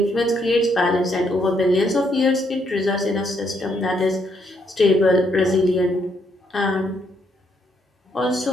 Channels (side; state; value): both; normal; correlation 0.74